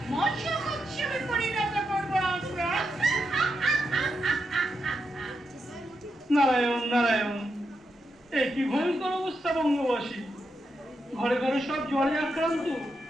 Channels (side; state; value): both; normal; correlation 0.85